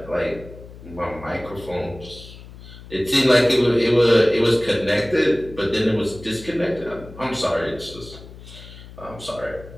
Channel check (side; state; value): left; noise; hum, 17 dB below the sound